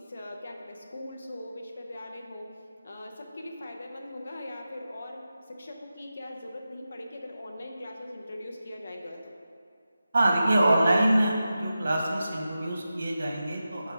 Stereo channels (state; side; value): inverted; both; correlation -0.92